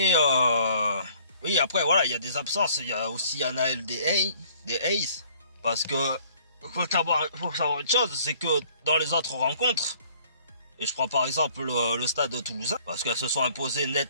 oui, après voilà, il y a des absences. Il y a aussi Anaël des Hayes. Parce que faut savoir une chose, c'est que dans les autres rencontres, et je prends par exemple le stade toulousain, parce qu'elles se sont imposées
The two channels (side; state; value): both; inverted; correlation -0.58